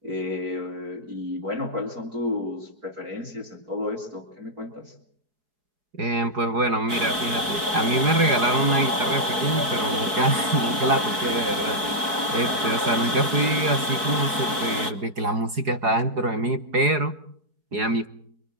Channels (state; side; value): late; left; 4.6 ms